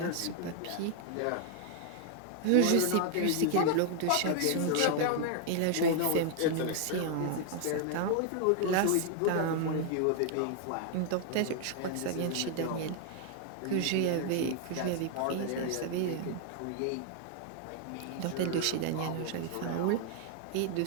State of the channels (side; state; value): both; different; correlation 0.00